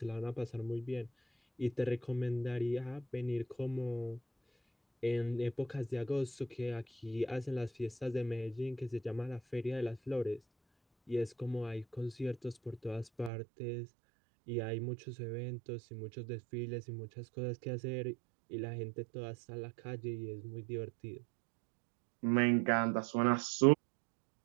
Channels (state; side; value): drops out; left; at 13.3 s